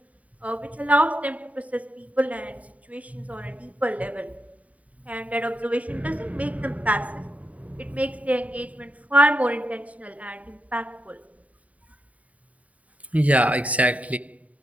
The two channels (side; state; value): left; late; 0.069 ms